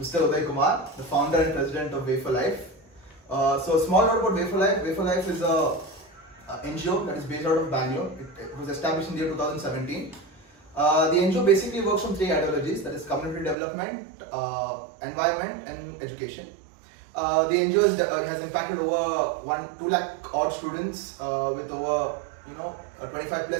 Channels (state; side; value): drops out; left; at 13.6 s